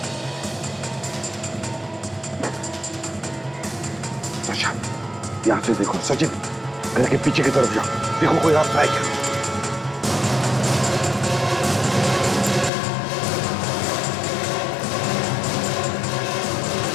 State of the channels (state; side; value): drops out; right; at 12.7 s